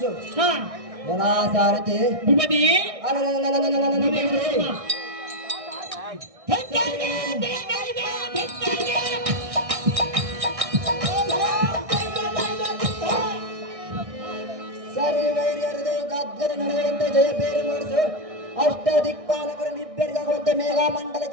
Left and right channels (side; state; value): left; late; 1.6 ms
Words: ಸಾರಥಿ ಸರಿ ವೈರ್ಯರದು ಗದ್ದರ ನಡೆಯುವಂತೆ ಜಯಪೇರು ಮಾಡಿಸು. ಅಷ್ಟ ದಿಕ್ಪಾಲಕರು ನಿಬ್ಬೆರಗಾಗುವಂತೆ ಮೇಘ